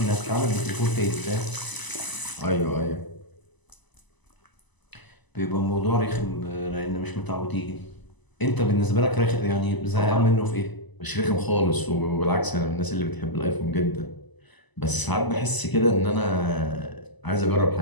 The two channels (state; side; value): late; right; 1.0 ms